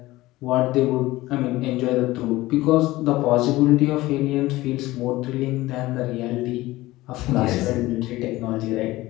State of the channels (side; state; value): right; quieter; 18.2 dB